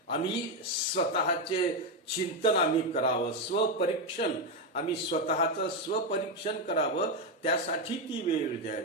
आम्ही स्वतःचे चिंतन आम्ही करावं. स्वपरीक्षण, आम्ही स्वतःचं स्वपरीक्षण करावं, त्यासाठी ती वेळ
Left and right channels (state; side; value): normal; both; correlation 0.08